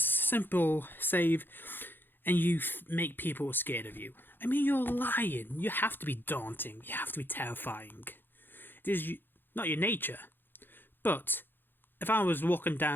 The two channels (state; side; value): late; right; 0.097 ms